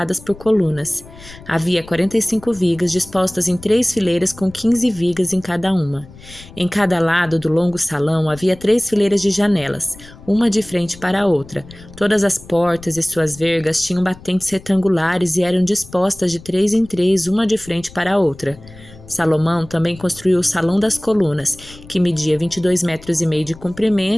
por colunas. Havia 45 vigas dispostas em 3 fileiras com 15 vigas em cada uma. Em cada lado do longo salão havia 3 fileiras de janelas, uma de frente para a outra. Todas as portas e suas vergas tinham batentes retangulares e eram dispostas de 3 em 3, uma de frente para a outra. Salomão também construiu o Salão das Colunas, que media 22 metros e meio de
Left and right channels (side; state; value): left; noise; rumble, 20 dB below the sound